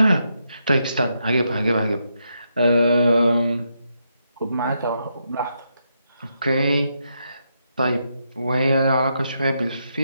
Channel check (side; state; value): both; inverted; correlation -0.81